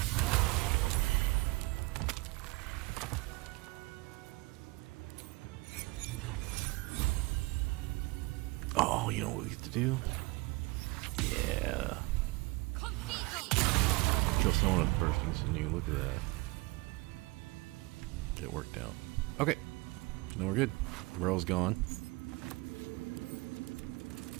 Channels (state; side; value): quieter; left; 24.0 dB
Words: Oh, you know what we get to do? Yeah. Kill someone with bursting sinew. Look at that. It worked out. Okay. Now we're good. Ro's gone.